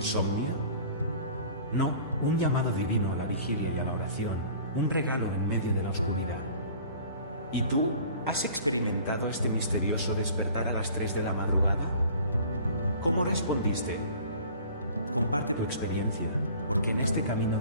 No, un llamado divino a la vigilia y a la oración, un regalo en medio de la oscuridad. ¿Y tú, has experimentado este misterioso despertar a las 3 de la madrugada? ¿Cómo respondiste? Comparte tu experiencia, porque en este camino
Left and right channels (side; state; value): both; inverted; correlation -0.47